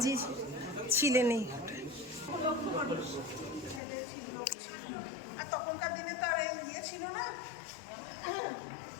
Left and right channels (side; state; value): right; drops out; at 3.8 s